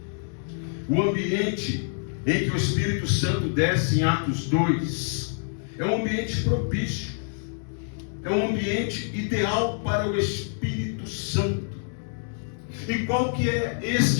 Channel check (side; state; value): right; silent; digital silence